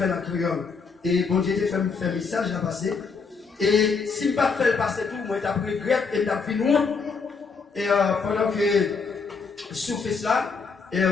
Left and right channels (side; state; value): right; quieter; 5.0 dB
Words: la créole. Et bon Dieu t'a fait un message à passer. Et si je ne pas fait passer tout, moi j'ai pris grec et j'ai fait nous. Et pendant que je fais cela, et